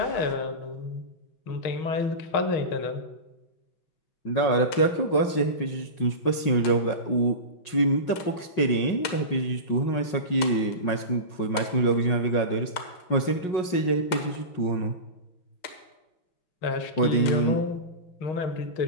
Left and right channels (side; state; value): right; late; 5.5 ms